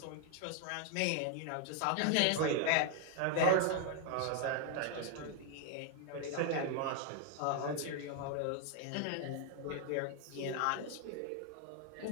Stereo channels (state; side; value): different; both; correlation 0.00